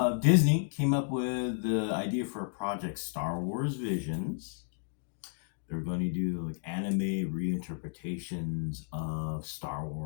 Disney came up with the idea for a project, Star Wars Visions. They're going to do like anime reinterpretations of Star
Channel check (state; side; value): silent; right; digital silence